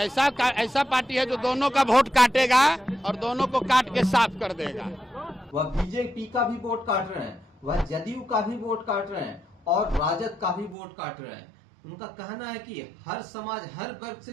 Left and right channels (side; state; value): left; drops out; at 10.8 s